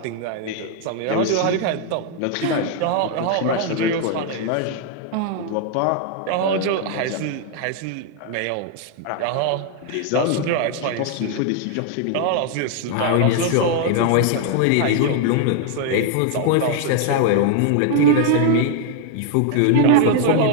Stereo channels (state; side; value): different; both; correlation 0.00